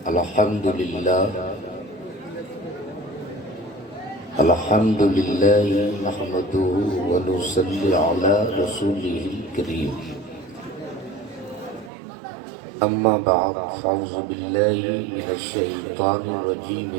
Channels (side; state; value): left; drops out; at 11.9 s